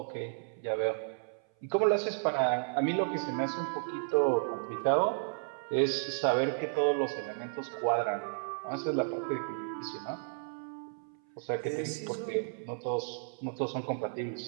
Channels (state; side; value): silent; left; 56 dB below the other